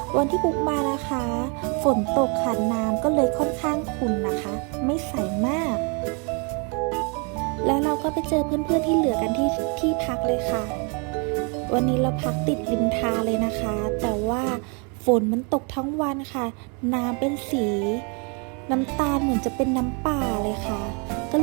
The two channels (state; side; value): quieter; left; 34.8 dB